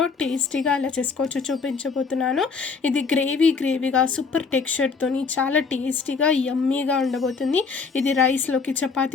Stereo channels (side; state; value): right; quieter; 5.0 dB